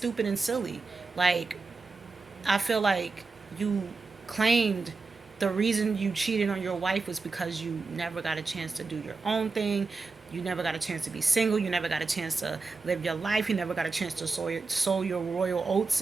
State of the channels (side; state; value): left; quieter; 4.1 dB